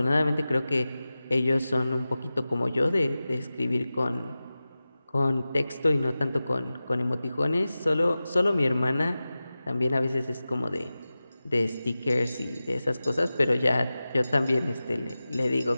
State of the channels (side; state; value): both; inverted; correlation -0.95